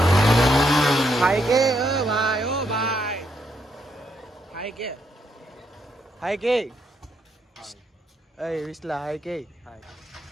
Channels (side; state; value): both; normal; correlation 0.76